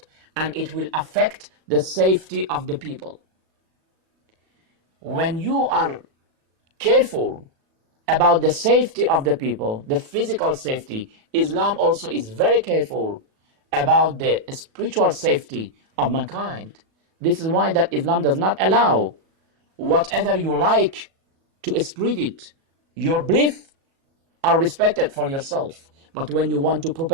and it will affect the safety of the people. When you are careful about the safety of the people, the physical safety, Islam also is very careful about the spiritual safety of mankind. This is why that Islam does not allow whatever you like to spread it. Your beliefs are respected for yourself. But when you want to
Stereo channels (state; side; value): late; left; 37 ms